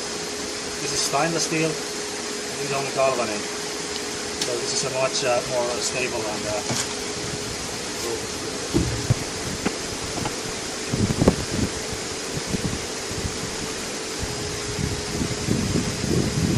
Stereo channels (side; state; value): both; identical; correlation 1.00